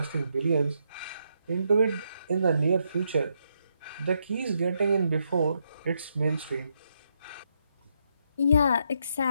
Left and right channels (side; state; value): both; inverted; correlation -0.79